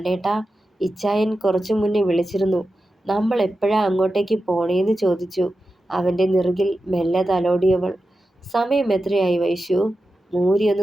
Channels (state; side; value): normal; both; correlation 0.92